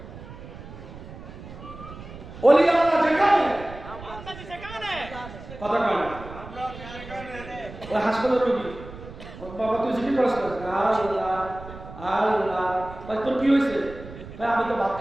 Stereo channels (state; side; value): noise; right; rumble, 14 dB below the sound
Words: ওলি আল্লাহ যেখানে কথা কয় না, ওই হাসপাতালের রোগী, বাবা তুই জিজ্ঞেস করিস না, আল্লাহ আল্লাহ ভাই তোর কি হয়েছে? ভাই আমি তো ভাত